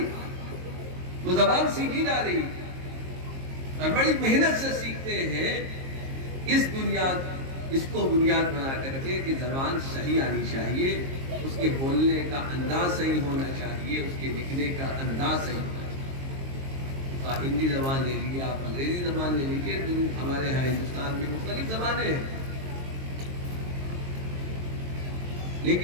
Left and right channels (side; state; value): left; late; 22 ms